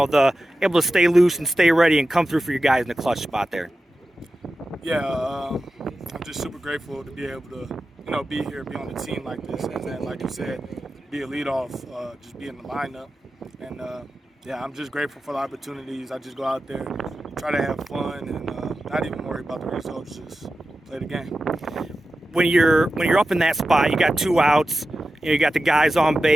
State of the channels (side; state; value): both; normal; correlation 0.93